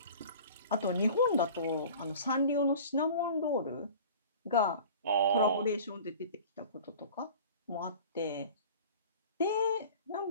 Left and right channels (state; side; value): inverted; both; correlation -0.41